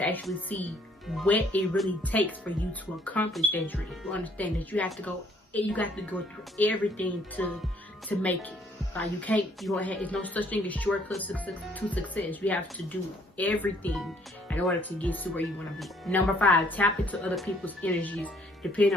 actually see what it really takes for you to accomplish that dream. You understand that you have to go through everything to make it. It's no such thing as shortcuts to success. You have to do everything in order to get to where you want to be. Number 5, tap into other people's energies.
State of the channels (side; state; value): both; normal; correlation 0.64